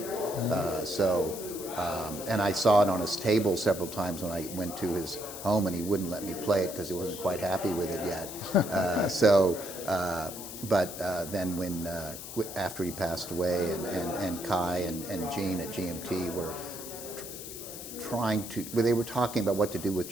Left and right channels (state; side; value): noise; left; hiss, 10 dB below the sound